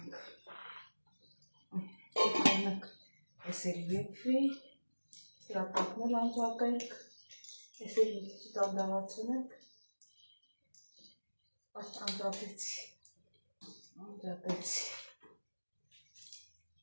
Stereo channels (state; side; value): inverted; both; correlation -1.00